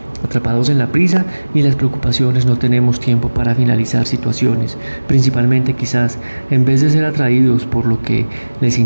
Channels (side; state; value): both; inverted; correlation -1.00